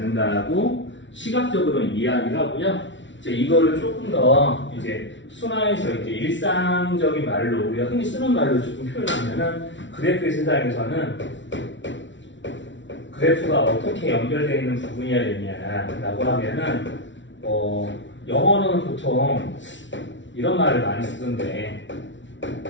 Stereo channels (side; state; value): right; late; 0.55 ms